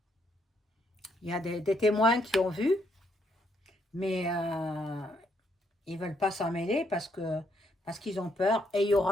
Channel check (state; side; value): normal; both; correlation 0.74